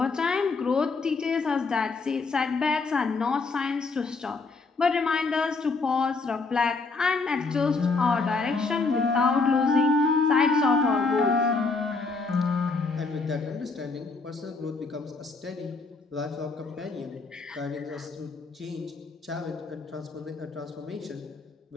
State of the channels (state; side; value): quieter; right; 4.1 dB